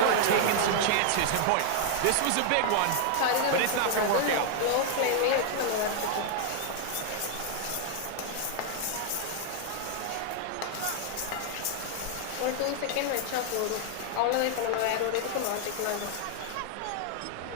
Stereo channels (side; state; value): both; different; correlation 0.00